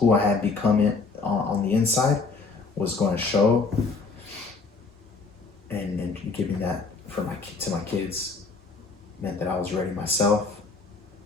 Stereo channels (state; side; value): quieter; right; 4.2 dB